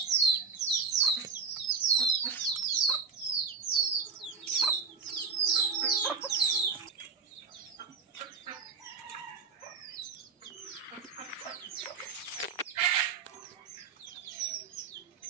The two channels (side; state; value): left; quieter; 5.3 dB